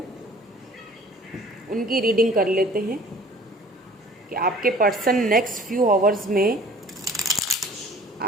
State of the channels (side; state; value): both; normal; correlation 0.50